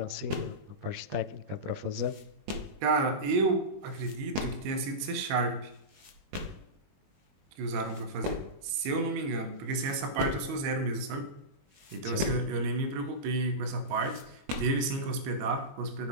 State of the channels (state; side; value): late; left; 22 ms